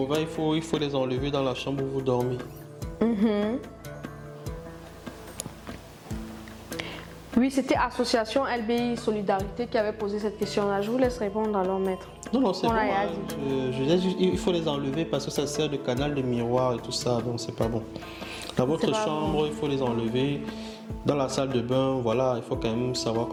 il faut les enlever dans la chambre où vous dormez. Oui, c'était Association LBI Solidarité qui avait posé cette question-là. Je vous laisse répondre alors, maître. Non, c'est bon. Il faut les enlever parce que ça sert de canal de miroir et tout ça, donc c'est pas bon. Dans votre chambre, il faut les enlever. Dans la salle de bain, voilà, il faut quand même savoir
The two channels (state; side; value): identical; both; correlation 1.00